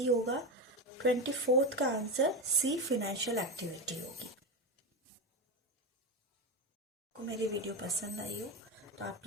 होगा। 24th का आंसर सी फाइनेंशियल एक्टिविटी होगी। आपको मेरी वीडियो पसंद आई हो तो आप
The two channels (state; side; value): normal; both; correlation 0.15